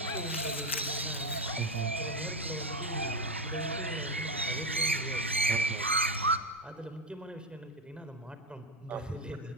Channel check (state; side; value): normal; both; correlation 0.11